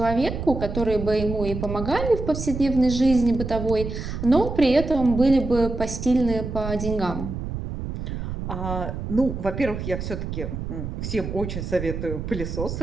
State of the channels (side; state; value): right; noise; rumble, 6 dB below the sound